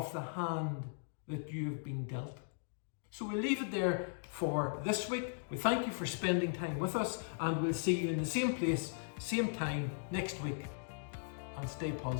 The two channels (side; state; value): right; silent; digital silence